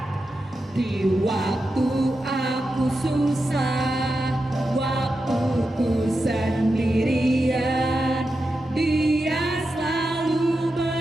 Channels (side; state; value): both; normal; correlation 0.89